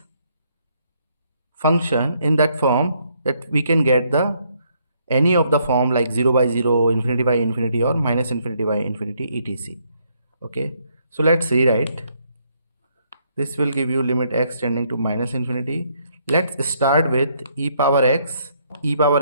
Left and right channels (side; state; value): both; inverted; correlation -0.71